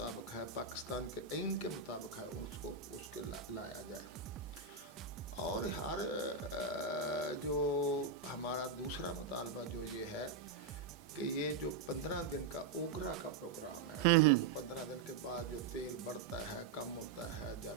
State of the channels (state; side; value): quieter; left; 4.8 dB